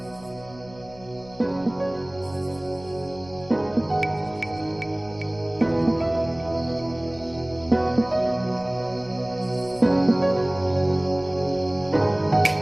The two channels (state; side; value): noise; left; hum, 21 dB below the sound